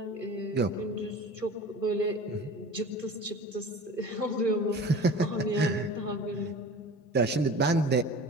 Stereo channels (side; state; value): both; normal; correlation 0.38